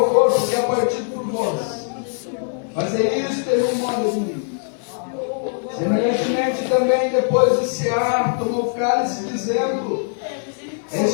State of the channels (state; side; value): silent; right; 65 dB below the other